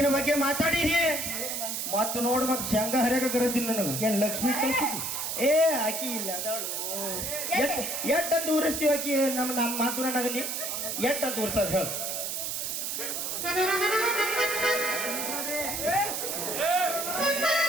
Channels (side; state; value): right; noise; hiss, 3 dB below the sound